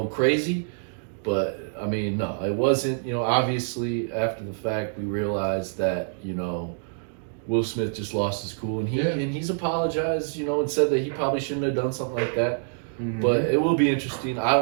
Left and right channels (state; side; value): silent; left; digital silence